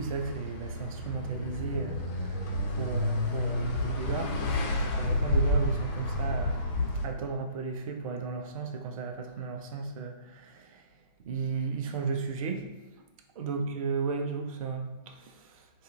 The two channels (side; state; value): both; inverted; correlation -0.54